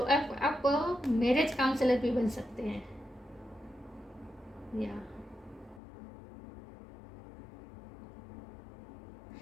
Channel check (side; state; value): right; drops out; at 5.8 s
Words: मैरिज काउंसलर भी बन सकते हैं, या